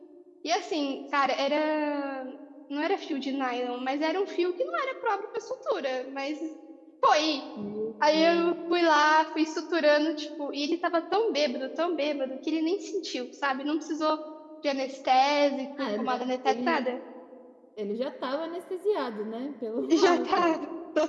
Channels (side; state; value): both; identical; correlation 1.00